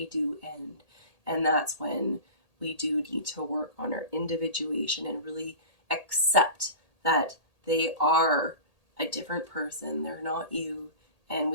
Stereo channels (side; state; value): right; late; 1.8 ms